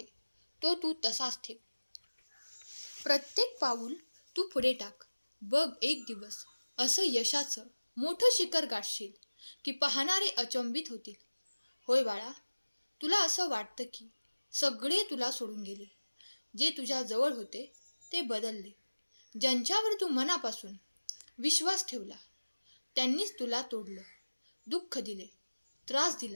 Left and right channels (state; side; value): inverted; both; correlation -1.00